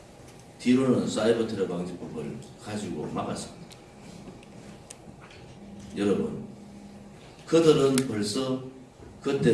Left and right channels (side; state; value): both; identical; correlation 1.00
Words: 뒤로는 사이버 테러방지법을 가지고 막았습니다. 여러분, 그들은 벌써